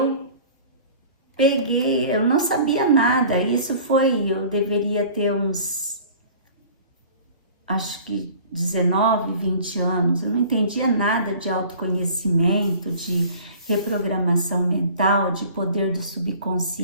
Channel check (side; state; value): both; inverted; correlation -0.46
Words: peguei, eu não sabia nada, eu deveria ter uns, acho que 19, 20 anos, eu não entendia nada de autoconhecimento, de reprogramação mental, de poder do